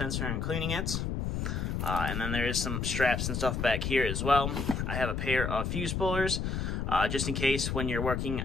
and cleaning it. And then there is some straps and stuff back here as well. I have a pair of fuse pullers. Just in case when you're working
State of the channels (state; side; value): noise; left; rumble, 1 dB below the sound